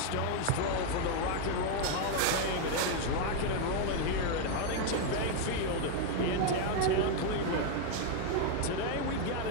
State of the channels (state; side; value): different; both; correlation 0.01